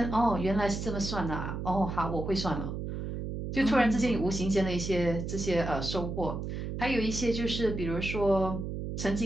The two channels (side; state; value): right; noise; hum, 5 dB below the sound